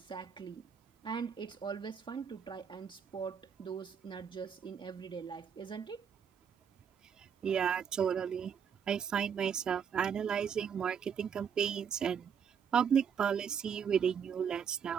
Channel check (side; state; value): left; quieter; 7.4 dB